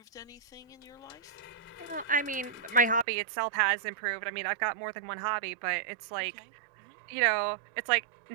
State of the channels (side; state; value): left; drops out; at 3.1 s